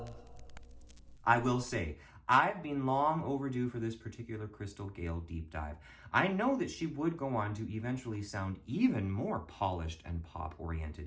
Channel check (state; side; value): identical; both; correlation 1.00